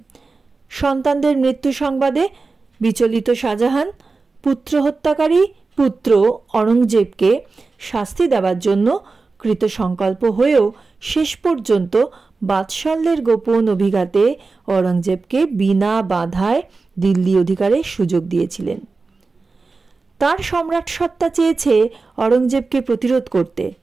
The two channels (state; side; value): quieter; left; 4.0 dB